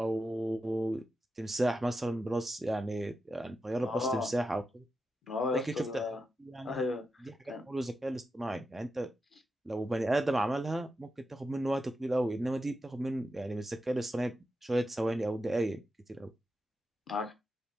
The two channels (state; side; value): normal; both; correlation 0.88